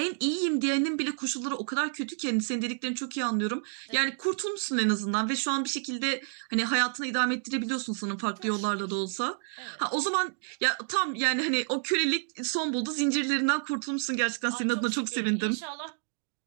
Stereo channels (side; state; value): left; silent; 58 dB below the other